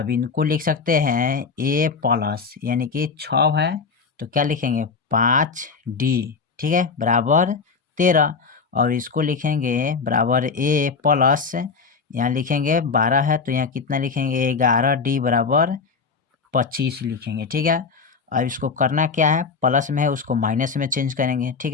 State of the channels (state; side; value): quieter; right; 5.1 dB